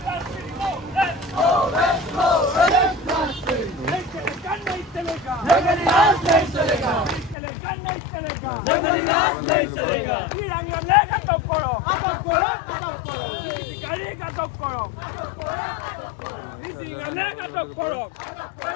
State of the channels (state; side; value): drops out; right; at 7.4 s